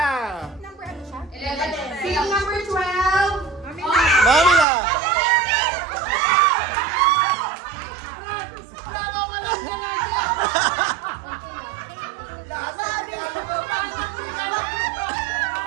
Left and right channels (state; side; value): drops out; left; at 4.7 s